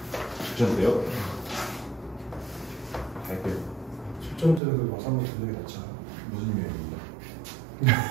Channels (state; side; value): drops out; left; at 4.6 s